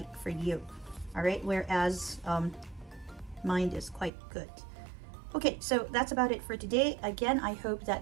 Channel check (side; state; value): left; drops out; at 4.1 s